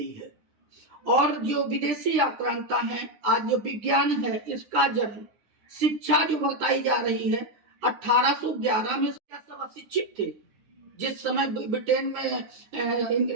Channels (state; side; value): late; left; 9.9 ms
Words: है, और जो विदेशी आक्रांता है, आज जो विज्ञान है, इसका जन्म, शिक्षा जो बताई जा रही है 1811 में सब अशिक्षित थे। जिस समय ब्रिटेन